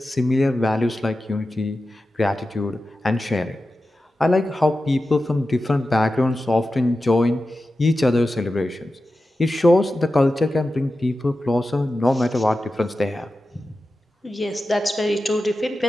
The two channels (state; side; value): normal; both; correlation 0.93